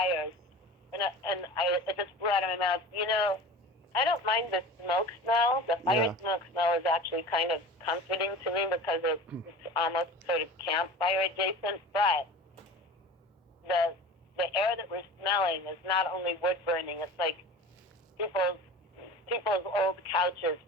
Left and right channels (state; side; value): normal; both; correlation 0.37